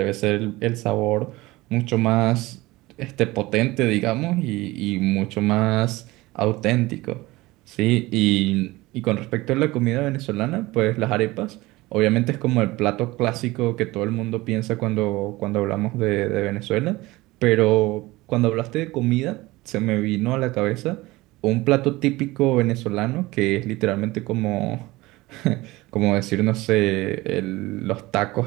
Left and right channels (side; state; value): left; quieter; 20.0 dB